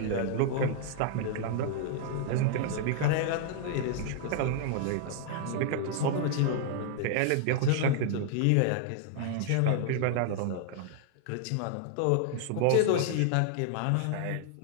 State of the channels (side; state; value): both; different; correlation -0.01